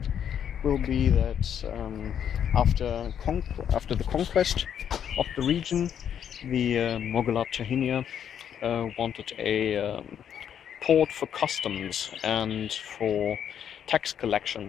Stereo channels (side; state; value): right; quieter; 8.9 dB